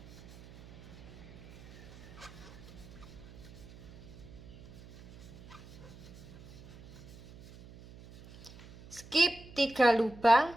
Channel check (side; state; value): right; noise; hum, 19 dB below the sound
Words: Skip 3 lubang,